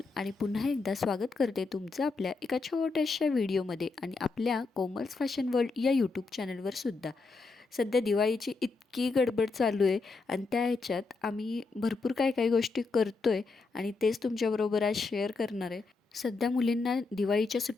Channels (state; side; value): quieter; right; 4.0 dB